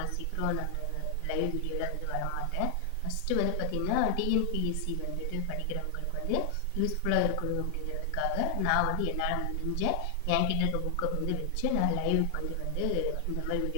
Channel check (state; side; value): different; both; correlation 0.00